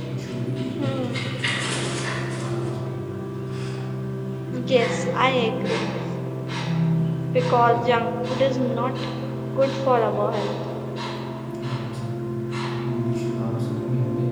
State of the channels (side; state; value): both; identical; correlation 1.00